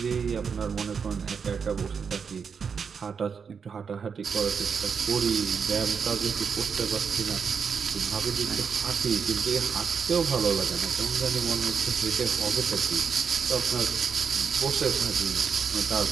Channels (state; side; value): quieter; left; 6.3 dB